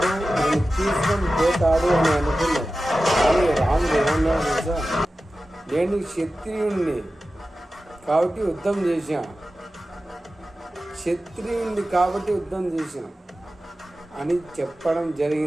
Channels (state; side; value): normal; both; correlation 0.94